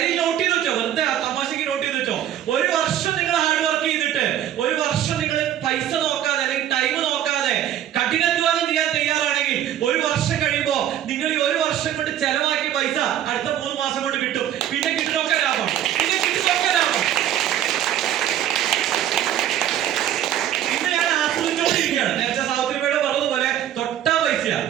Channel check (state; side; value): quieter; left; 11.2 dB